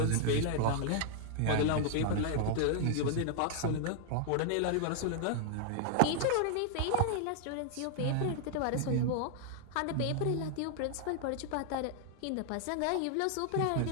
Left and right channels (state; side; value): different; both; correlation 0.00